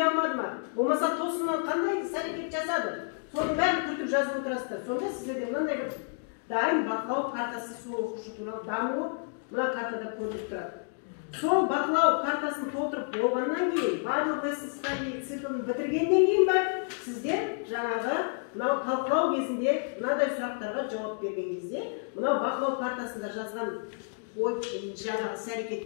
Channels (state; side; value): silent; right; 58 dB below the other